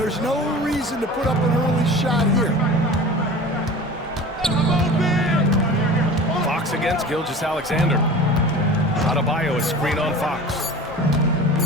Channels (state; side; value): normal; both; correlation 0.38